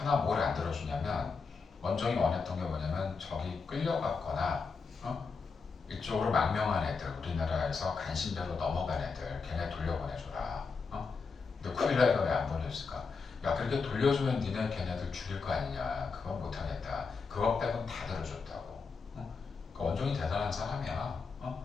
뭘 안 들어주냐면 원종이 원했던 게 뭐냐면 저기 끌려갔거나 이쪽으로 망명한 애들 우리나라에서 간신배로 넘어간 애들 걔네 돌려보내줘라 근데 쿠빌라이가 왜 안 보내줬을까 야 그렇게 돌려주면 니네 걔네들 죽일 거 아니냐 그건 못하겠다 그거 빼곤 다 들어줬다고 그러니까 원종이 대단한 사람이야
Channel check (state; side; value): quieter; right; 4.9 dB